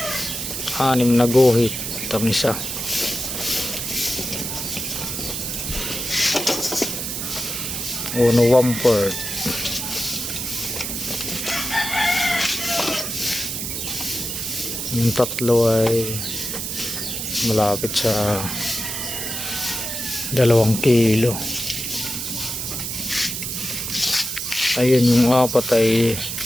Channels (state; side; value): noise; right; hiss, 4 dB below the sound